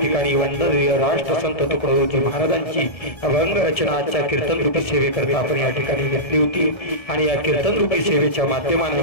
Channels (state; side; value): late; right; 1.7 ms